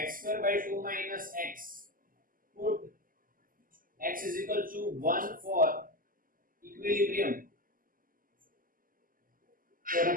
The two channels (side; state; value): left; late; 0.41 ms